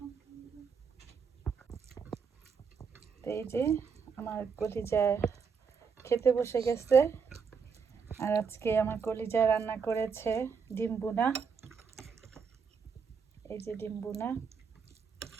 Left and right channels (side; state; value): left; quieter; 5.9 dB